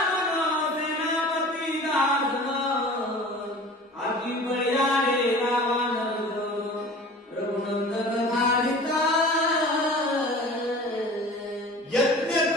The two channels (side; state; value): both; normal; correlation 0.41